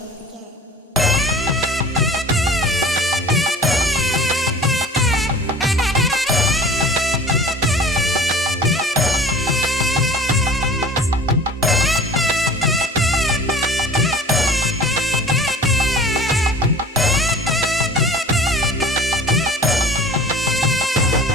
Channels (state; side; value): normal; both; correlation 0.43